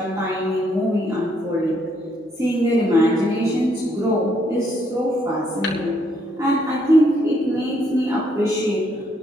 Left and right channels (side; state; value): both; normal; correlation 0.72